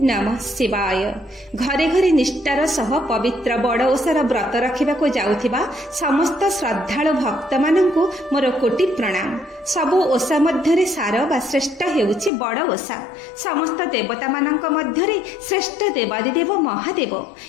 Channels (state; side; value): drops out; right; at 12.3 s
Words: नमः शिवाय। घरे घरे निष्ठार सह पवित्र बड़ ओषार व्रत रखा जाउथिबा समस्त श्रद्धालु भक्त मानंकु मोर कोटि प्रणाम। सबु ओषा मध्यरे सार बा श्रेष्ठ हेउछि बड़ ओषा। समस्त देवता मानंक मध्यरे श्रेष्ठ देवादिदेव महादेव,